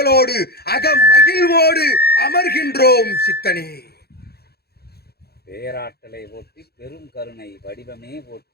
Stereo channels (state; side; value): late; right; 0.46 ms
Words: அகமகிழ்வோடு அமர்கின்றோம் சித்தனே. பேராற்றலை போற்றி பெரும் கருணை வடிவமே